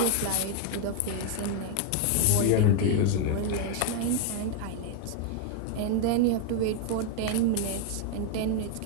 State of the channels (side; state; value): both; different; correlation 0.00